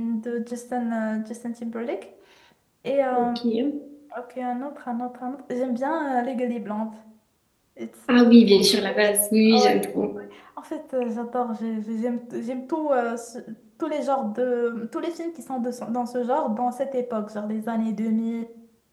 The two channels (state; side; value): identical; both; correlation 1.00